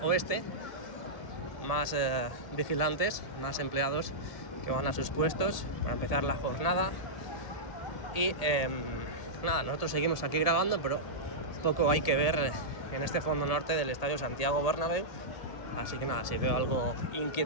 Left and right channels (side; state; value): right; late; 1.7 ms